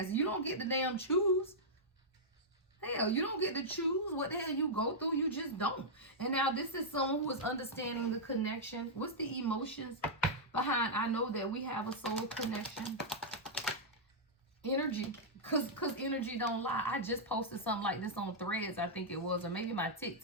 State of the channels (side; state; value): both; normal; correlation -0.08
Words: You don't get to damn choose. Hell, you don't get to choose what the hell you go through. You just don't. And now this is someone who is understanding the connection. What's the emotions behind I know that we have a soul connection? Energy. Because energy don't lie. I just posted something like this on Threads, I think it was, or maybe my